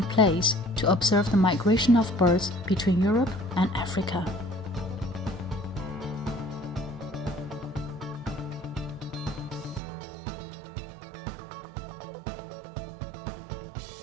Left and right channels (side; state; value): left; drops out; at 9.8 s